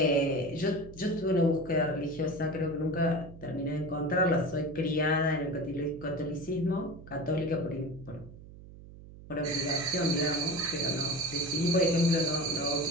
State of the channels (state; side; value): noise; right; hum, 17 dB below the sound